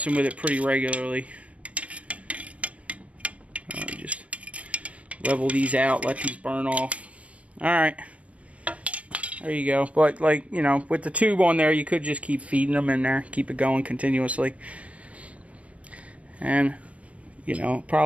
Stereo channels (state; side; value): late; left; 0.065 ms